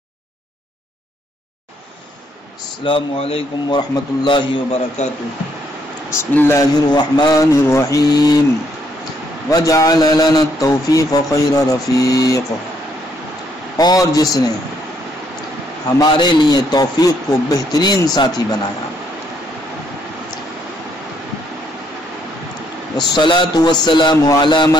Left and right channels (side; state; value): both; normal; correlation 0.71